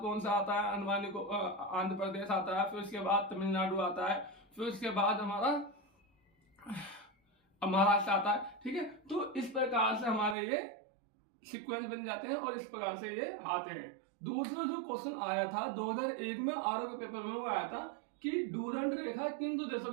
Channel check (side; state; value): left; drops out; at 10.4 s